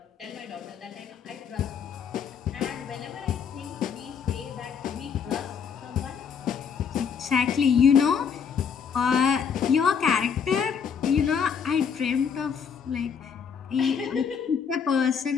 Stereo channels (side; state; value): right; quieter; 6.9 dB